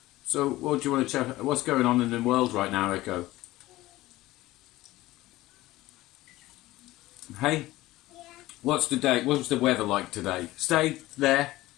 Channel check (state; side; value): quieter; right; 17.5 dB